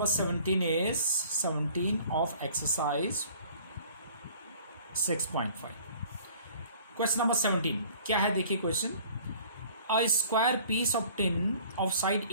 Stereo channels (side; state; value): both; inverted; correlation -0.51